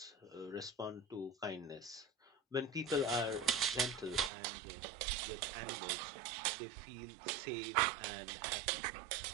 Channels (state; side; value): drops out; left; at 4.3 s